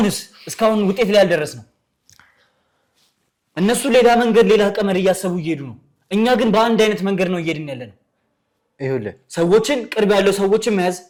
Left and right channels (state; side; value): identical; both; correlation 1.00